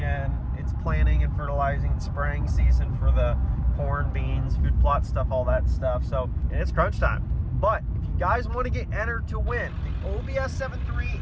It's planting and fertilizing and spraying season for the corn, beans, food plot stuff, all that stuff. So it's crunch time. But if you guys want to get entered to win the OBS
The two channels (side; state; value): both; identical; correlation 1.00